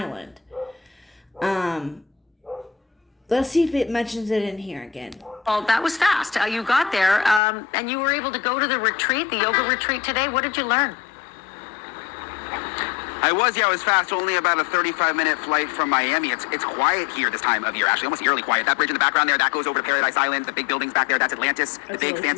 Let's see if it mentions it in here again. well, that was fast. You got there, and you were able to go to the retreat, the yoga retreat today. What did you learn? I was fast. Only about a 35-minute flight from Miami. It's quiet here this time of year, actually, almost eerily quiet. That bridge in the background there, that goes over to Paradise Island. The big buildings back there, that's Atlantis, the big,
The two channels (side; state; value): right; drops out; at 7.4 s